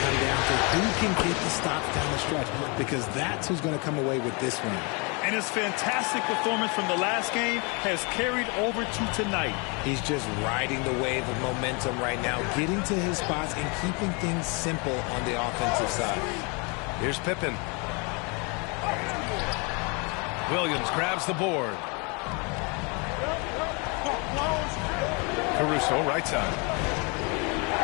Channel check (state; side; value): quieter; right; 31.5 dB